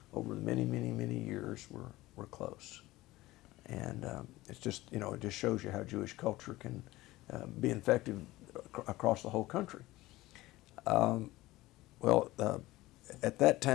over the many years, were close. And it's just, it just shows you how Jewish culture can be effective across the whole country. At that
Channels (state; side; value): quieter; right; 18.2 dB